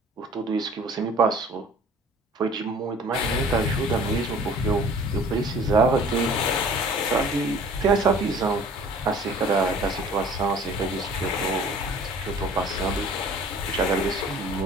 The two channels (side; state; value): both; normal; correlation 0.49